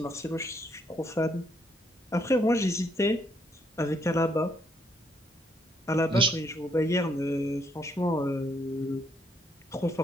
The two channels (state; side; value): normal; both; correlation 0.72